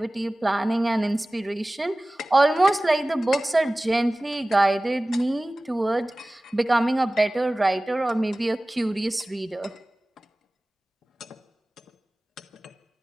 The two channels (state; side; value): normal; both; correlation 0.98